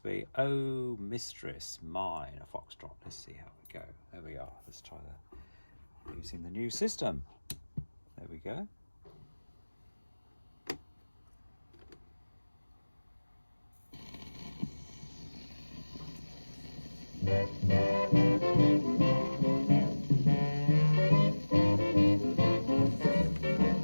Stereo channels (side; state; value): both; inverted; correlation -1.00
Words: Oh Mistress Mine, a foxtrot. Let's see how we go. There we are, let's try using the new system. There we go.